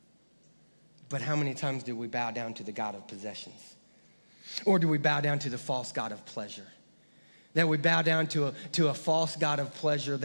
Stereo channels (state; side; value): inverted; both; correlation -1.00